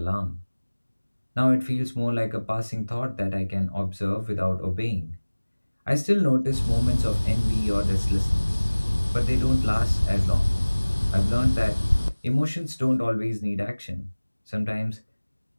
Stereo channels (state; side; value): inverted; both; correlation -1.00